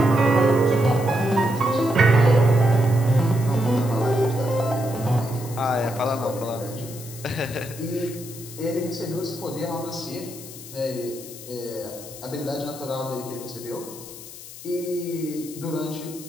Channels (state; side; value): noise; left; hiss, 14 dB below the sound